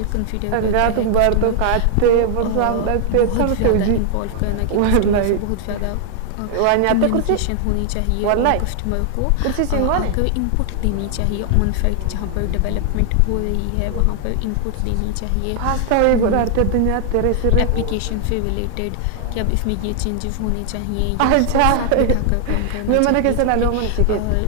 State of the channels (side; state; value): both; different; correlation 0.00